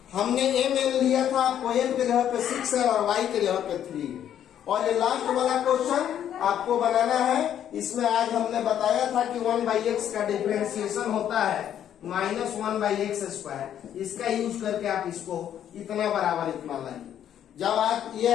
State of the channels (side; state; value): right; quieter; 10.1 dB